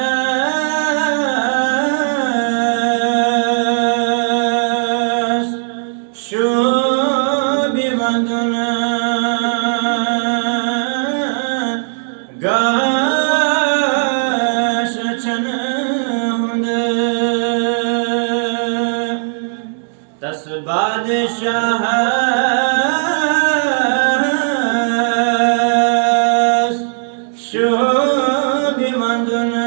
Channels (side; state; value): left; silent; digital silence